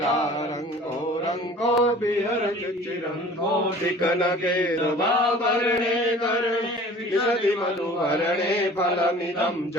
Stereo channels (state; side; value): normal; both; correlation 0.46